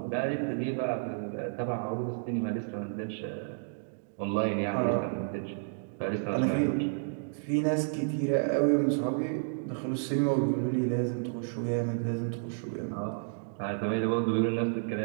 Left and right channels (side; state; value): left; silent; digital silence